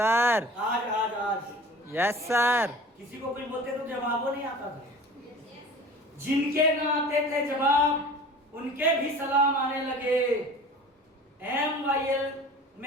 आज यस सर। किसी को कुछ बोलते तो जवाब नहीं आता था। जिनके ना आते थे जवाब उनके भी सलाम आने लगे। MYL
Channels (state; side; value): normal; both; correlation 0.42